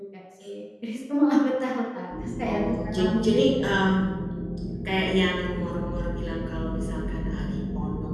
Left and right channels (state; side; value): identical; both; correlation 1.00